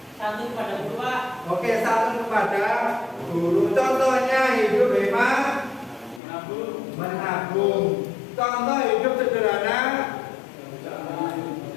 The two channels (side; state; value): right; drops out; at 6.2 s